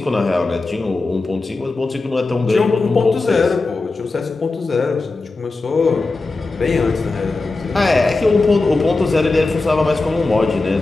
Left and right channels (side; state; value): right; quieter; 3.5 dB